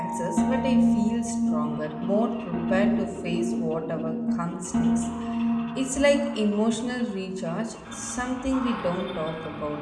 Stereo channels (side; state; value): both; identical; correlation 1.00